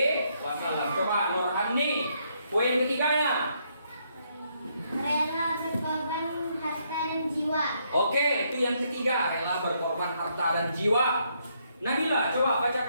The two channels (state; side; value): inverted; both; correlation -0.74